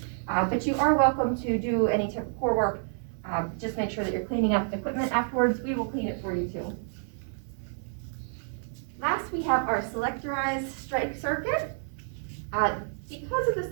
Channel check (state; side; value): silent; left; 59 dB below the other